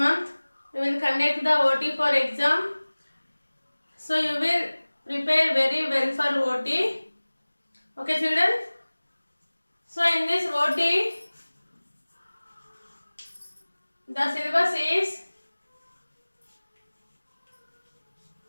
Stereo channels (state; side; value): inverted; both; correlation -1.00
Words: month we will conduct the OT for exam. So you will prepare very well for OT. Okay children. So in this OT, the syllabus is